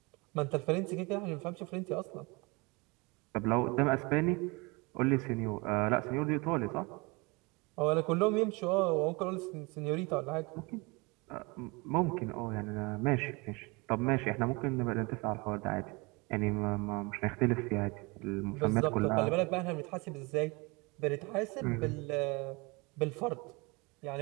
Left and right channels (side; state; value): left; quieter; 26.9 dB